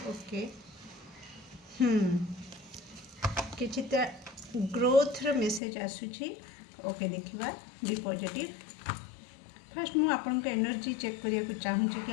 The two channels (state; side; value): drops out; right; at 5.6 s